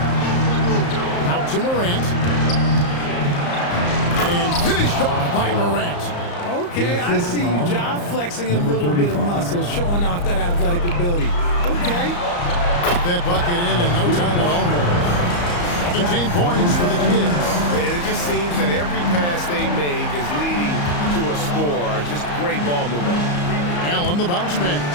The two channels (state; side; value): late; right; 34 ms